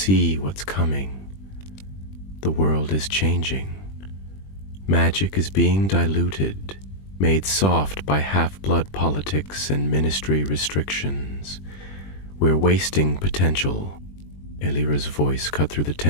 what's coming. The world is changing. Magic is being diluted, made soft by half-blood politics and ministry restrictions. We're wasting potential. Elira's voice cut through the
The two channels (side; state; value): right; late; 21 ms